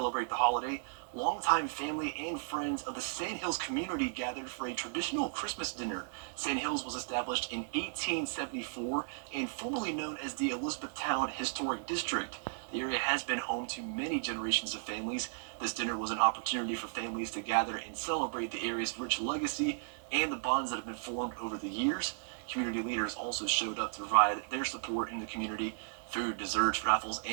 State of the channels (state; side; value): silent; left; digital silence